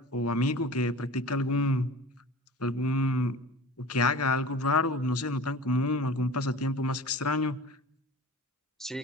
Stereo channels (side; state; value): both; normal; correlation 0.39